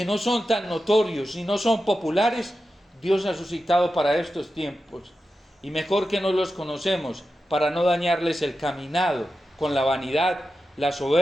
no son tan notorios y no son populares, Dios ha suscitado para estos tiempos. Y mejor que no los conocemos para no dañarles el caminado con la vanidad, la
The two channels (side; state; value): both; normal; correlation 0.91